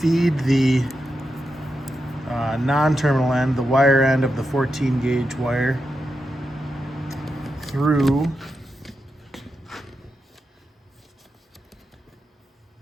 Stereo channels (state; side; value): normal; both; correlation 0.88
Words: the non-terminal end, the wire end of the 14 gauge wire, through